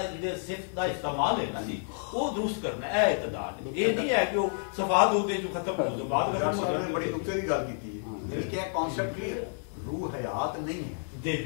جڑے صفت دا استعمال ہے نا جی وہ درست کرنا ہے، اے اعتدال ہے، یہ نہیں ہے کہ وہ صفات ہو دے جو ختم ہو بعد ختم ہو جائے۔ بڑی نقطے کی گل کیتی ہے، یعنی کہ ایک کانسیپٹ کلیئر ہے روح حیات نہیں ہے،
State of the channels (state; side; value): silent; right; digital silence